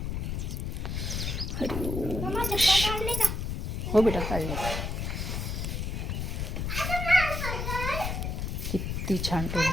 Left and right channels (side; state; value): left; noise; rumble, 2 dB below the sound